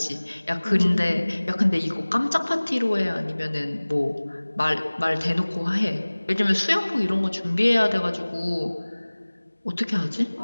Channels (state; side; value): inverted; both; correlation -1.00